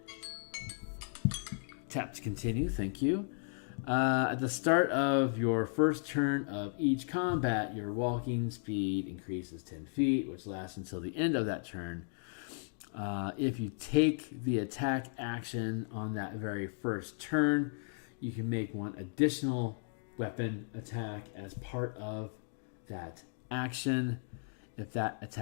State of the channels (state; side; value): silent; right; digital silence